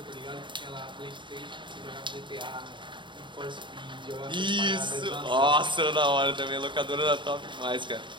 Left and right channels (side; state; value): left; late; 0.23 ms